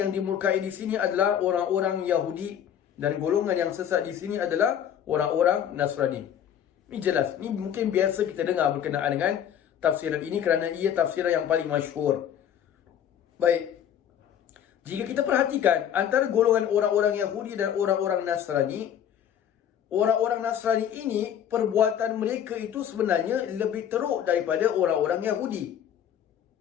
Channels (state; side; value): quieter; right; 9.5 dB